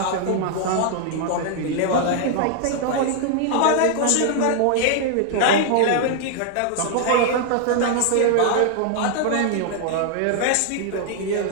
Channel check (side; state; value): both; different; correlation 0.00